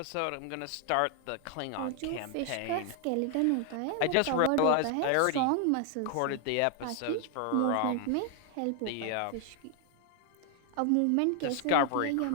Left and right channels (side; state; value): both; different; correlation 0.00